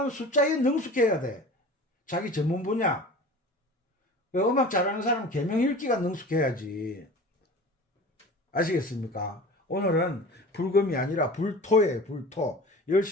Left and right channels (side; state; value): both; normal; correlation 0.39